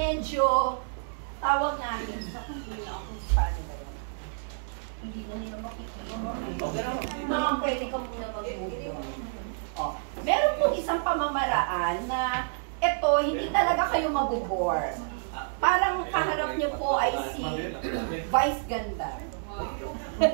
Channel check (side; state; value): left; silent; digital silence